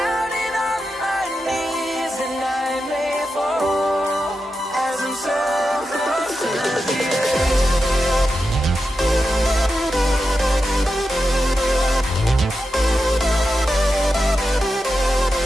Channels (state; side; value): normal; both; correlation 0.89